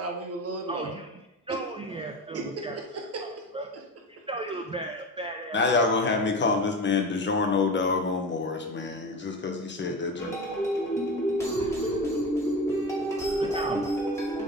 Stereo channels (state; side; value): normal; both; correlation 0.27